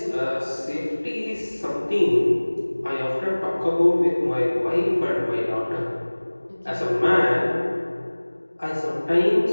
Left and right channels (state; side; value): inverted; both; correlation -1.00